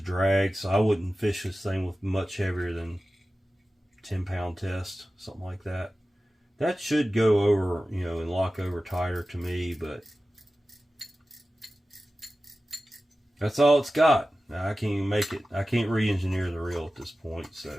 drag, so I wouldn't fish this thing with much heavier than 10-pound test, something like that. That should go over, you know, and lock over tighter to me, but that's all it's got. Now, I can't even make it. I can't re-engineer the reel at this point, so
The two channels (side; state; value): both; normal; correlation 0.95